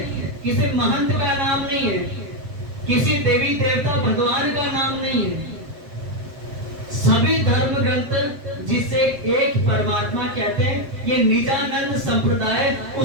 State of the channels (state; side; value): late; left; 7.8 ms